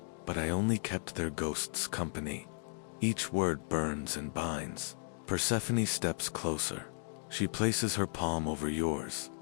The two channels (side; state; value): right; silent; 54 dB below the other